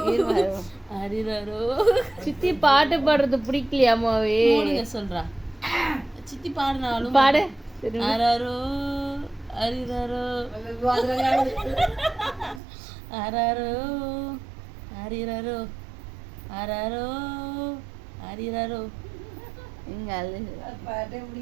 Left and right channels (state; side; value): drops out; left; at 12.6 s